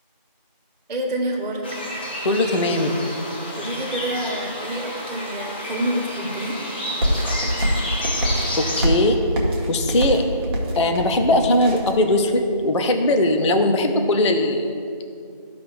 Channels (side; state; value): both; inverted; correlation -0.39